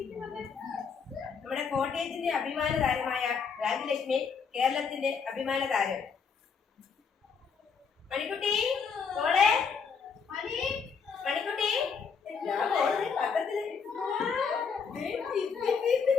നമ്മുടെ കോട്ടയത്തിന്റെ അഭിമാന താരമായ രാജലക്ഷ്മി കേരളത്തിന്റെ അഭിമാന താരം. മണിക്കുട്ടി മോളെ മണിക്കുട്ടി പത്രത്തില്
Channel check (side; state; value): right; quieter; 5.9 dB